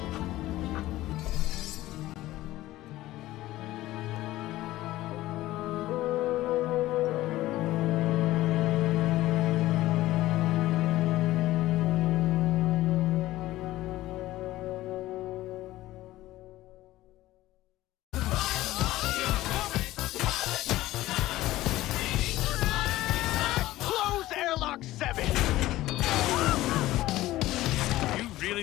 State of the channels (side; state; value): right; quieter; 16.3 dB